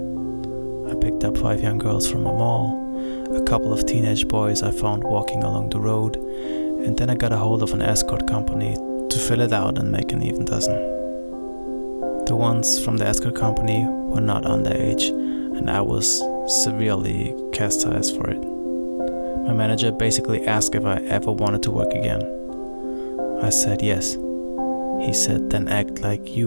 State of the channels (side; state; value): both; inverted; correlation -1.00